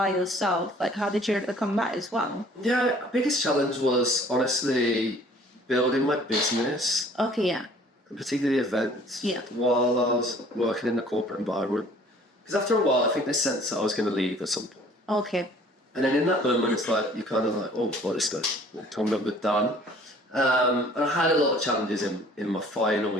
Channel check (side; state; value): both; normal; correlation 0.54